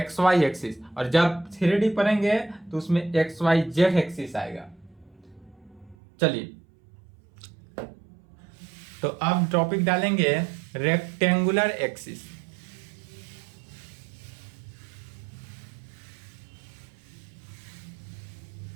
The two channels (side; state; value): left; drops out; at 6.0 s